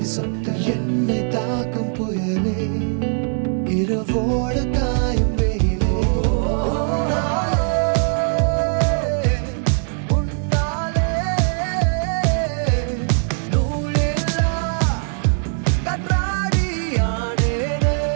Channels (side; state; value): left; silent; 57 dB below the other